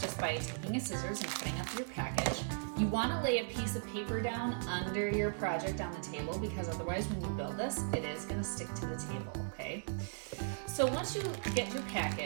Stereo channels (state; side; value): silent; left; digital silence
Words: by taking a scissors and cutting up your package. You want to lay a piece of paper down under your project on the table because otherwise when you build this, it is going to stick to the table, okay? So once you get your